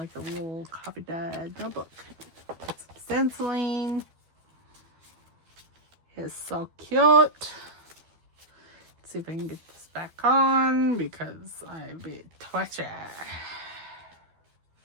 a little copy dyed notebook. Put some stenciling. It's so cute. Let's see if I can get this back on because I be twitchy.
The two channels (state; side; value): late; left; 12 ms